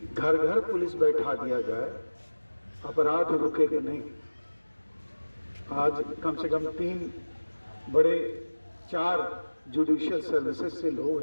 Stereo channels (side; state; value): both; inverted; correlation -1.00